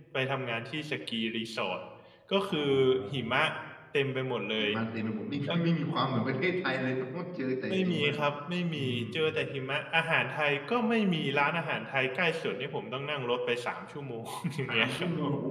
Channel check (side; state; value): both; identical; correlation 1.00